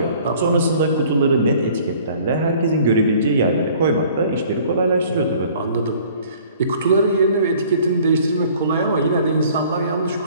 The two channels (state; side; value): inverted; both; correlation -0.54